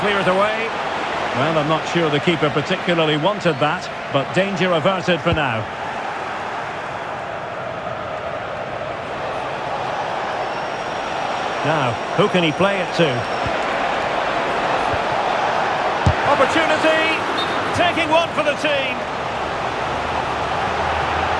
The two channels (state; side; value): identical; both; correlation 1.00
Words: it away? Well, I'm not sure the keeper particularly wanted that, but danger averted for now. Now, who can he play it to? Opportunity! Taking one for the team.